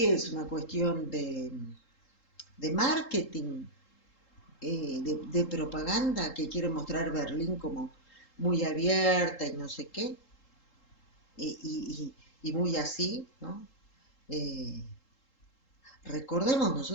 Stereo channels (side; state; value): right; late; 3.7 ms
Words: es una cuestión de marketing, de propaganda, que quiere mostrar Berlín como muy abierta y no sé qué, y muy así, ¿no? Eh, Recordemos,